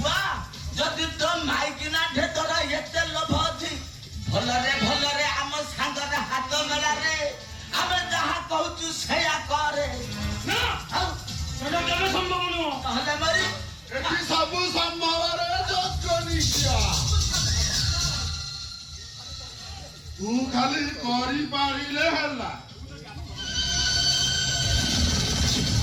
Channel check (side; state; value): both; identical; correlation 1.00